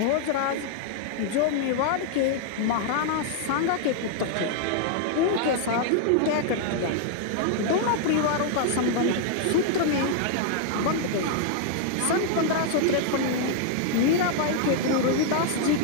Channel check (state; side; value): different; both; correlation -0.01